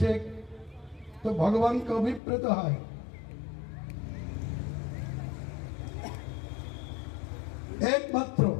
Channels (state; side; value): drops out; right; at 2.2 s